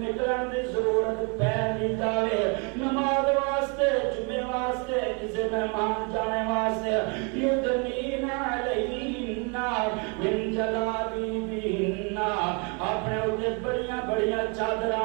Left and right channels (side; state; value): left; quieter; 34.1 dB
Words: دی ضرورت پہ نہیں جاوے نماز واسطے جمعے واسطے کسی مہمان جانے واسطے یدنین علیہن من جلابیبہن اپنے اوتے بڑیاں بڑیاں